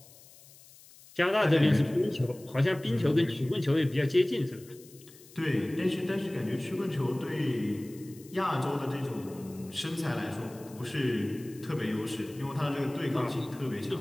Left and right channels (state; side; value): noise; left; hiss, 22 dB below the sound